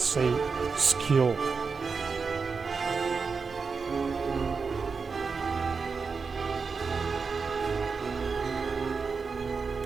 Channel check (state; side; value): quieter; left; 5.0 dB